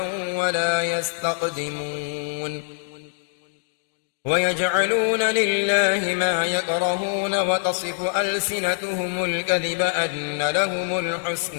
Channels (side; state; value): right; silent; 63 dB below the other